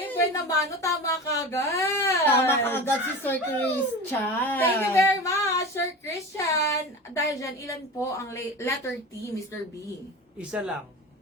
buwan naman. No, tama ka agad. Tama ka agad si Sir Christian. Thank you very much, Sir Christian. Dahil dyan, ilan po ang letter T, Mr. B? Isa lang.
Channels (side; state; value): both; normal; correlation 0.30